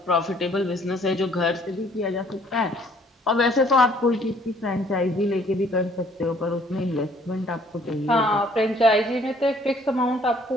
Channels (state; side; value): normal; both; correlation 0.60